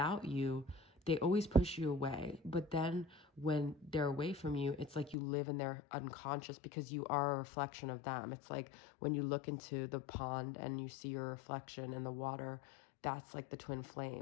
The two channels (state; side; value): drops out; right; at 5.2 s